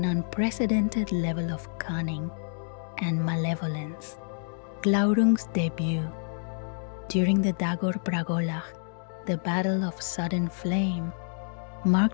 unprecedented level of cunning and malevolence. Glaurung's debut. During the Dagor Bragolach, the Battle of Sudden Flame,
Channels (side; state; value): right; silent; digital silence